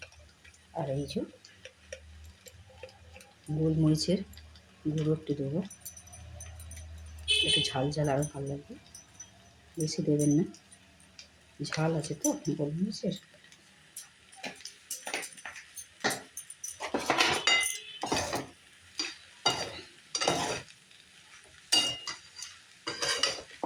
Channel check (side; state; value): both; identical; correlation 1.00